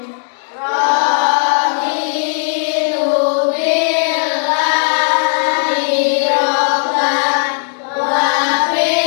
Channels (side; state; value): right; silent; digital silence